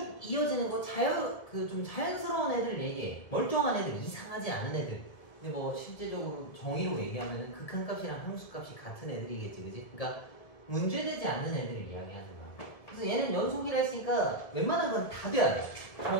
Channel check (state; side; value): late; right; 1.7 ms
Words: 이어지는 거, 좀 자연스러운 애들 얘기해. 멀쩡한 애들, 이상하지 않은 애들. 근데 뭐 실제적으로 정의로 얘기하면은 극한값이랑 함수값이 같은 애들이겠지, 그지? 그러니까 문제되지 않는 애들을 이야기하는 거야. 그래서 얘는 연속이라 했으니까 웬만한 건 다 돼야 돼.